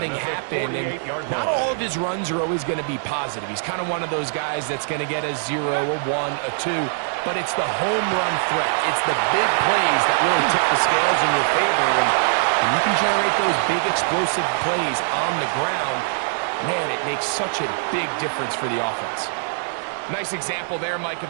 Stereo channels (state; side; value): silent; left; 61 dB below the other